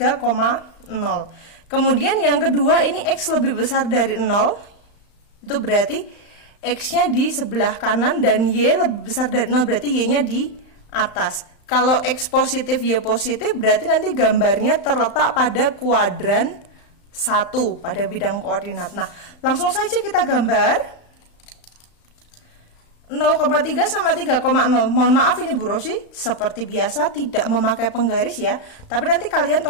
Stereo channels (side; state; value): right; late; 35 ms